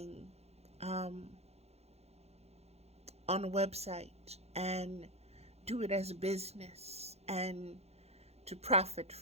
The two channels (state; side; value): late; left; 0.31 ms